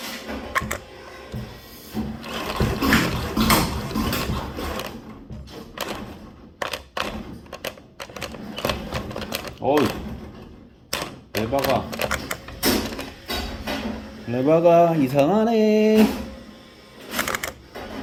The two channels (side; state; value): both; identical; correlation 1.00